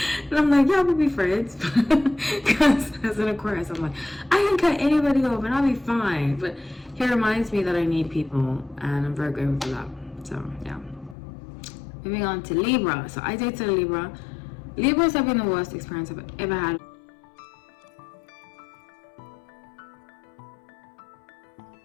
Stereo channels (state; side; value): drops out; right; at 11.2 s